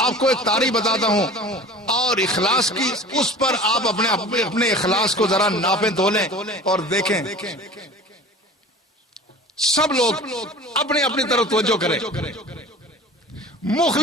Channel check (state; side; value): normal; both; correlation 0.40